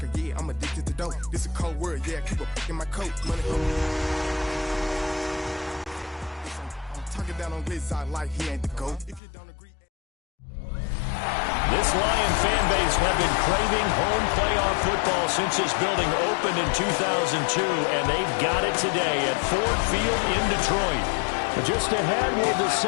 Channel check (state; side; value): drops out; right; at 9.2 s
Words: yeah, I'm addicted to dope. This a cold word, yeah, keep a pick in my coat. Money I'm talking down on this side like he ain't the GOAT. If you don't agree. This Lion fan base have been craving home playoff football since this building opened in 2002, and they've got it today at Ford Field in Detroit. But just ahead, we'll